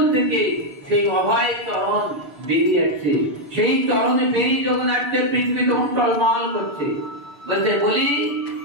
থেকে সেই অভয় চরণ বেরিয়ে আসছে। সেই চরণে বেরিয়ে যখন আসছে, পৃথিবী তখন টলমল করছে। বলছে বলি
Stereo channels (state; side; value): late; left; 6.8 ms